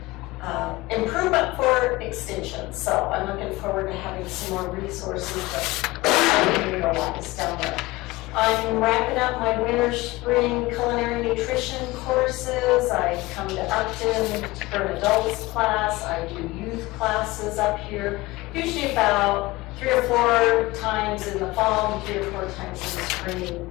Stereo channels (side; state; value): right; quieter; 20.4 dB